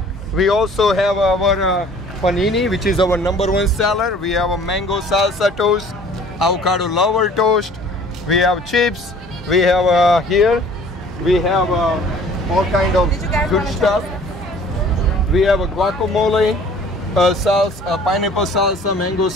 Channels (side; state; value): both; normal; correlation 0.51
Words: We also have our panini, which is our #1 seller. We have a mango salsa toast, avocado lover toast. We have chips. We have here. We have all kind of good stuff. We have a guacamole, salsa, pineapple salsa, mango